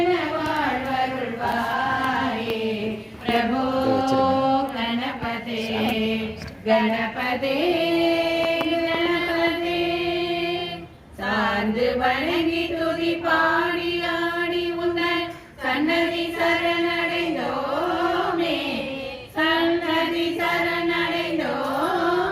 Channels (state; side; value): identical; both; correlation 1.00